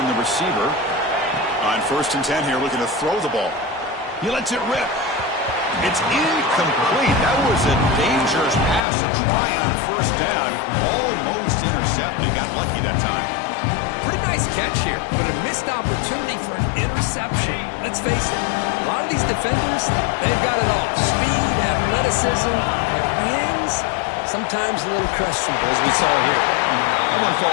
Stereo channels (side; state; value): right; drops out; at 8.8 s